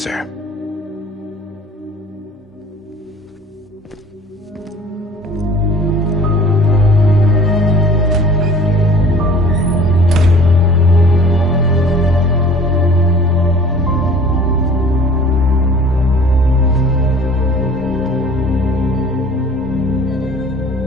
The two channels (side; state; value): both; normal; correlation 0.48